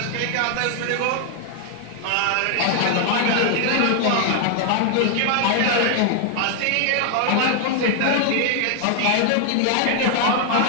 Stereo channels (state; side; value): different; both; correlation 0.00